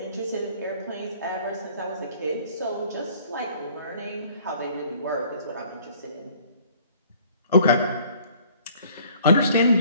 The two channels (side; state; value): both; inverted; correlation -0.55